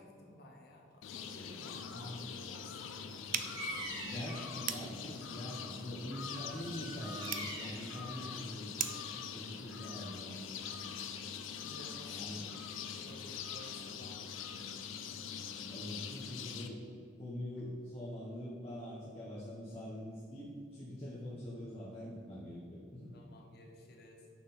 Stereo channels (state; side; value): normal; both; correlation 0.38